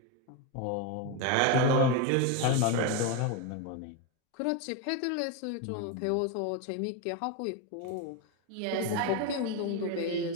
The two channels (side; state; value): both; different; correlation 0.02